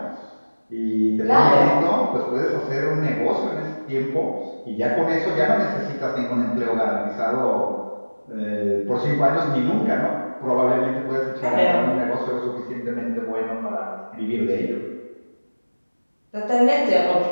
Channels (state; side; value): inverted; both; correlation -1.00